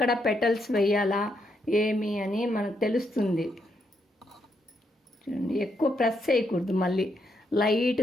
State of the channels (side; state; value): both; normal; correlation 0.78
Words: పెటల్స్ వేయాలా ఏమి అని మనకు తెలుస్తుంది. చూడండి, ఎక్కువ ప్రెస్ చేయకూడదు, మళ్ళీ